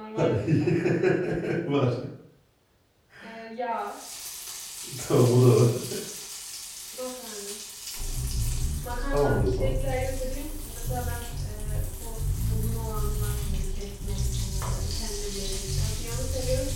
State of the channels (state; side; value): identical; both; correlation 1.00